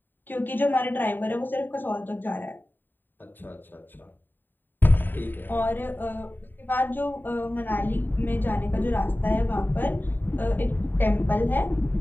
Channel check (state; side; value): late; right; 0.092 ms